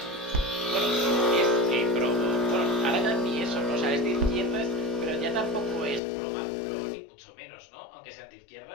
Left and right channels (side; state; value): right; drops out; at 6.0 s